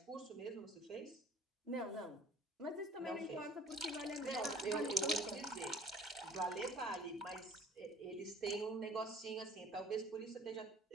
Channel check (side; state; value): both; normal; correlation 0.48